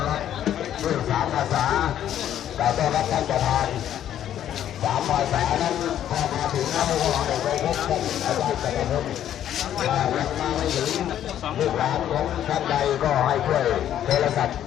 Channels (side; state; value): right; quieter; 10.9 dB